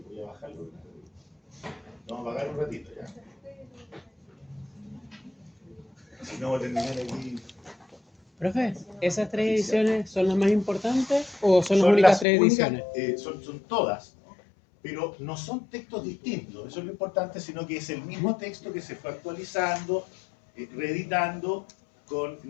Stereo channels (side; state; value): right; drops out; at 12.2 s